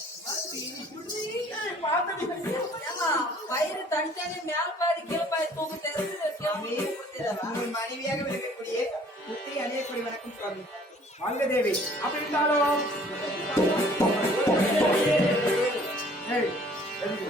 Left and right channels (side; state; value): both; normal; correlation 0.55